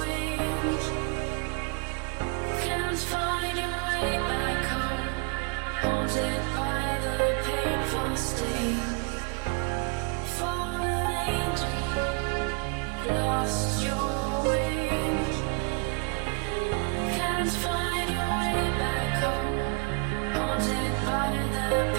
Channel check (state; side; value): quieter; left; 33.1 dB